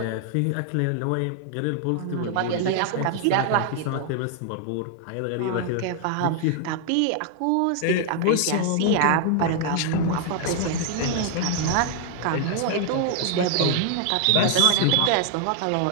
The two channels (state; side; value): different; both; correlation 0.00